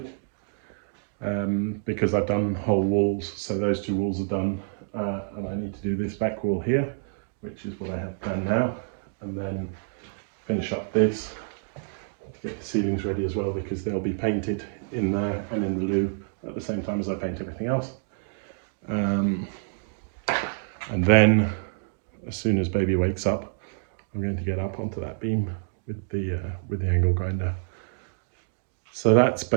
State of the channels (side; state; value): left; silent; digital silence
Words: because I've done whole walls. So those two walls are done, and I need to do this back wall here, which is what I have done now, and then finish up this to get the ceilings ready as well, because they'll be painted in there and in the loo at the same time as I paint everything else. And then as soon as baby wakes up, I'm going to get up onto that beam with the angle grinder. So that's